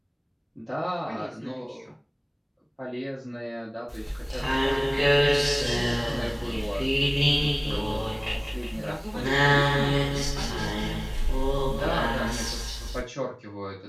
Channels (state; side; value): identical; both; correlation 1.00